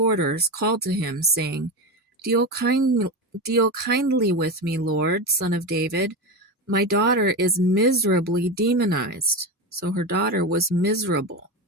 called to him, saying, Deal kindly with me, Lord, Son of David. My daughter is miserably demonized. So her daughter was miserable.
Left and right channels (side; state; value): both; normal; correlation 0.19